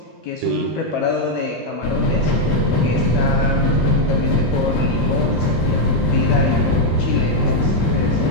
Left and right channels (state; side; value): normal; both; correlation 0.00